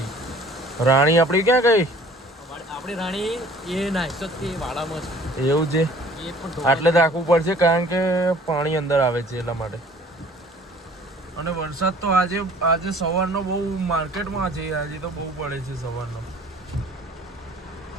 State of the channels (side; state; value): both; normal; correlation 0.51